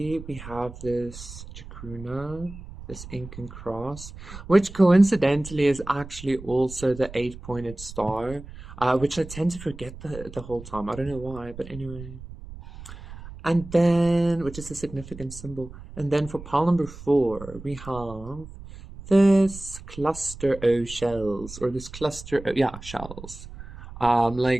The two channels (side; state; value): right; noise; rumble, 14 dB below the sound